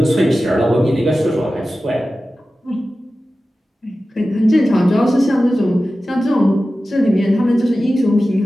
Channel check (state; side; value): normal; both; correlation 0.94